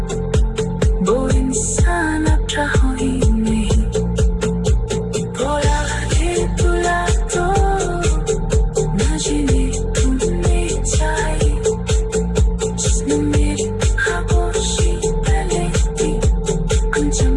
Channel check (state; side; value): identical; both; correlation 1.00